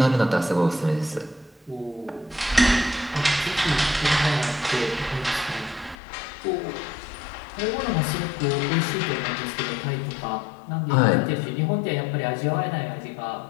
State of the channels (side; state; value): right; drops out; at 6.0 s